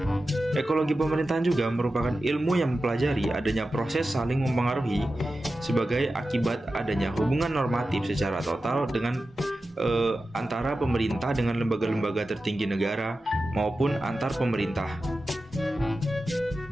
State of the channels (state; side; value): normal; both; correlation 0.93